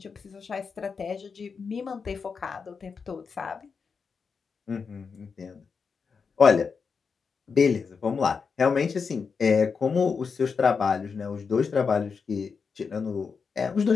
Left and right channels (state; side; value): quieter; right; 5.5 dB